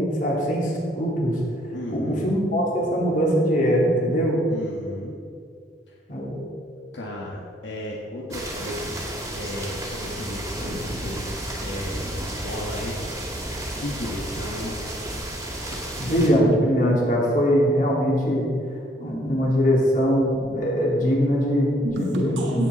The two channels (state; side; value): normal; both; correlation 0.64